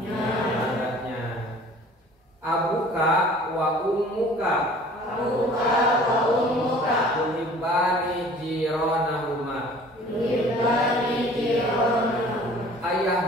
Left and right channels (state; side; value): normal; both; correlation 0.49